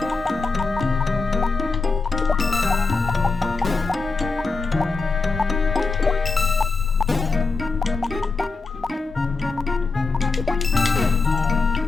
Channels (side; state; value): right; quieter; 4.1 dB